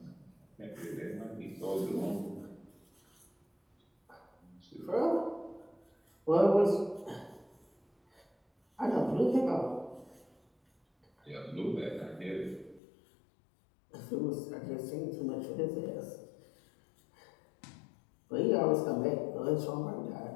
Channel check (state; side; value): drops out; right; at 12.8 s